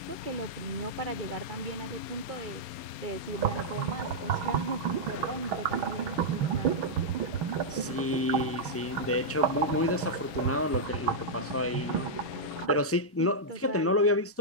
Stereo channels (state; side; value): normal; both; correlation -0.07